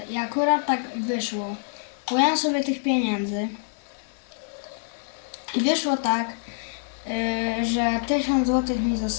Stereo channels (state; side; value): silent; right; 61 dB below the other